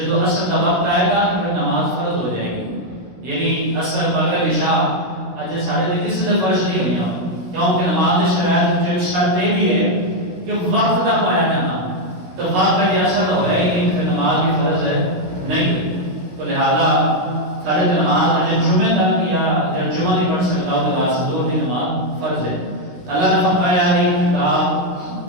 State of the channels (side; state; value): left; late; 16 ms